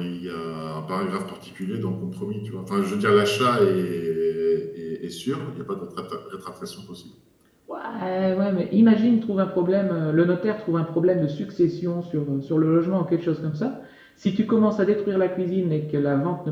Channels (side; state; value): both; identical; correlation 1.00